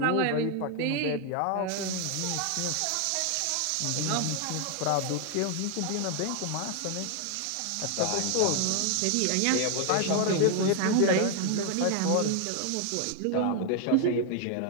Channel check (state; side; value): different; both; correlation 0.00